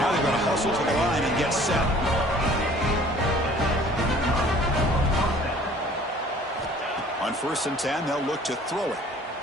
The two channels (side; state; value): both; normal; correlation 0.52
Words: they've got to hustle to the line and get set. On 1st and 10, they'll look to throw it.